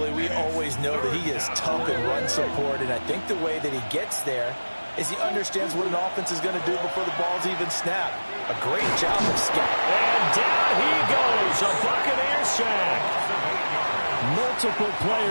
we always know that he is tough in run support, and I think the way that he gets there is he understands what an offense is going to do before the ball's even snapped. A great job of scouting. And down he goes, a Buccaneer sack. Multiple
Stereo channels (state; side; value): inverted; both; correlation -1.00